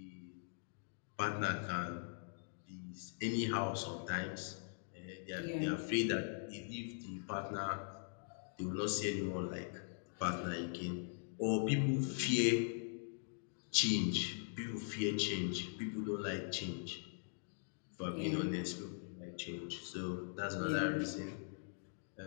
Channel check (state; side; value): silent; right; digital silence